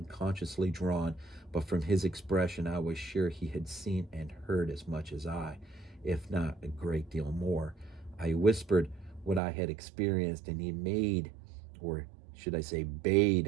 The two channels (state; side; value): drops out; left; at 9.4 s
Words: drawn, but from his expression I was sure he had seen and heard as much as I, if not a great deal more. I whispered what I had experienced, and he made, or should I say